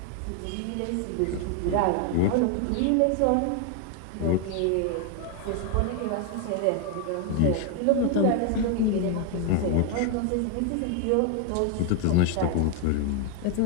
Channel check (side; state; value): both; different; correlation 0.00